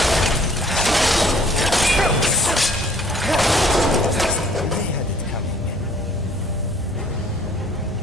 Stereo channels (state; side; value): normal; both; correlation 0.58